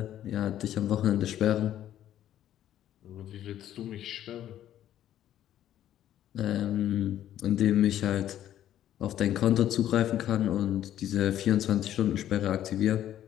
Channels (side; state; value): right; quieter; 11.7 dB